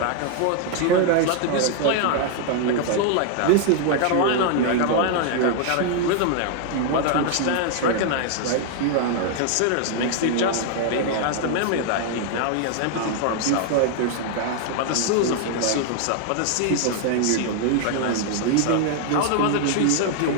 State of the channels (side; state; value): both; different; correlation 0.00